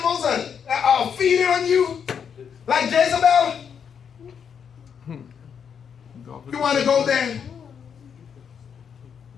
are feeding on you? Like Jezebel? You want to go there?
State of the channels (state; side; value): quieter; right; 7.3 dB